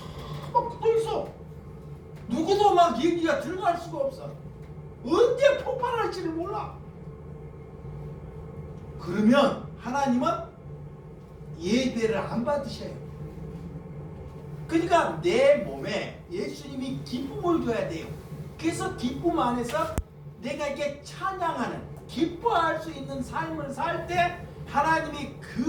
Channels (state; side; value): identical; both; correlation 1.00